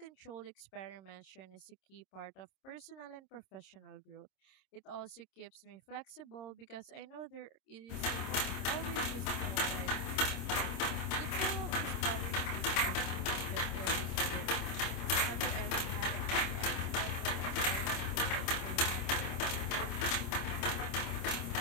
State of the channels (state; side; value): late; right; 26 ms